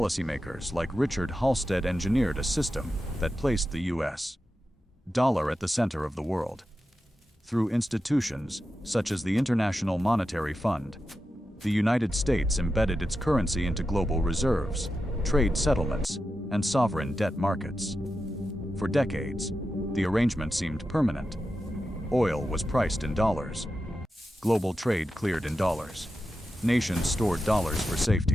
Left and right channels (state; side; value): normal; both; correlation 0.90